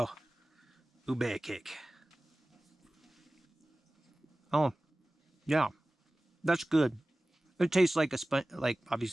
Ube cake. Oh, yeah, that's good. It tastes like a sponge, like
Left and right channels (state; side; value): normal; both; correlation 0.97